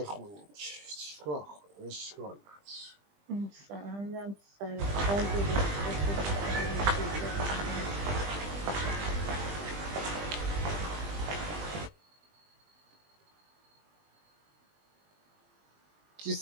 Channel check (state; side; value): late; left; 20 ms